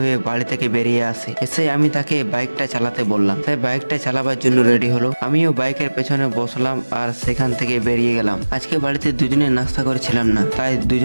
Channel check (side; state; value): both; inverted; correlation -1.00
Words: হয়ে বাড়ি থেকে বেরিয়ে আসে। এসে আমি তাকে বাইকটা চালাতে বললাম। তাই বাইকটা চালাবার জন্য রেডি হলো। আমিও বাইকের পেছনে বসলাম আর সেখান থেকে বেরিয়ে গেলাম। আজকে বাড়িতে দুজনে নাস্তা করেছিলাম না, তাই